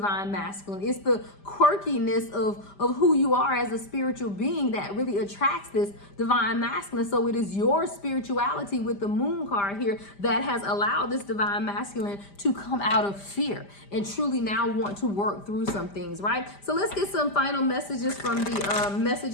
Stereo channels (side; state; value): right; late; 5.0 ms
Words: masculine. It's the quirkiness of who you are as a spiritual being that really attracts this divine masculine. So it is your spirituality with the moon card here that has allowed this divine masculine to come out of fear and truly now want to work through some things, right? So let's get some final messages from the